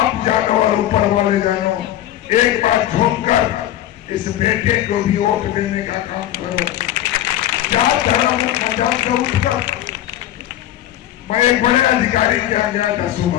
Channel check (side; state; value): right; quieter; 12.8 dB